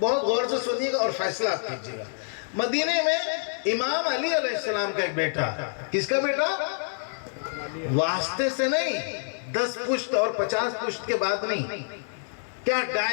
غور سے سنیے گا اور فیصلہ آپ کیجیے گا. مدینے میں امام علی علیہ السلام کا ایک بیٹا. کس کا بیٹا؟ واسطے سے نہیں، 10 پشت اور 50 پشت کے بعد نہیں. کیا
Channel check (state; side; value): silent; right; digital silence